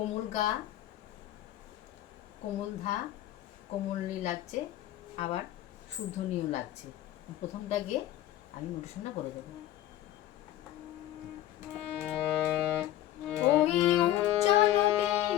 গা, কোমল ধা, কোমলনি লাগছে, আবার শুদ্ধনীয় লাগছে। প্রথমটা গিয়ে আমি নোটেশনটা বলে দেবো। ওই উজ্জ্বল দিন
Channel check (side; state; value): right; quieter; 13.7 dB